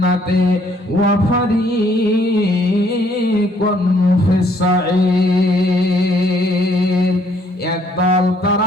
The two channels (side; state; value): both; normal; correlation 0.65